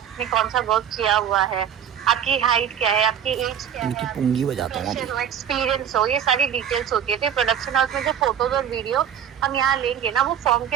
कौन सा वर्क किया हुआ है, आपकी हाइट क्या है, आपकी एज क्या है, पुंगी बजाता हूँ एक्सपीरियंस हो, ये सारी डिटेल्स होती है। तो प्रोडक्शन हाउस में जो फोटोज और वीडियो हम यहाँ लेंगे ना, वो फॉर्म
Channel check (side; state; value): left; quieter; 8.9 dB